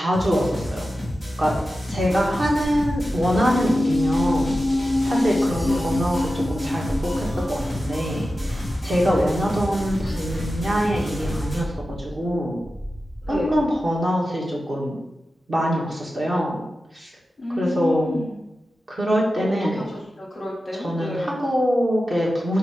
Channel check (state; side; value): normal; both; correlation 0.93